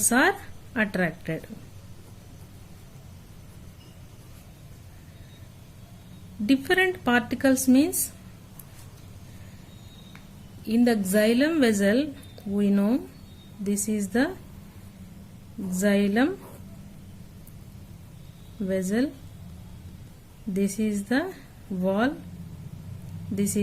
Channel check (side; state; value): both; identical; correlation 1.00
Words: are attracted. Different particles means in the xylem vessel, we know this is the xylem vessel, this is the wall, this